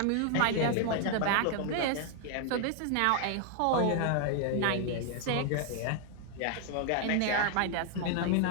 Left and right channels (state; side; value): different; both; correlation 0.00